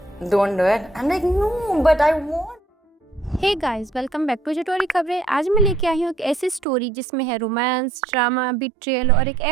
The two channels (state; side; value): drops out; left; at 6.7 s